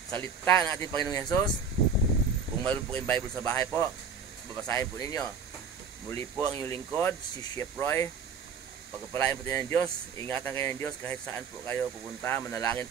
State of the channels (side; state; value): left; quieter; 5.8 dB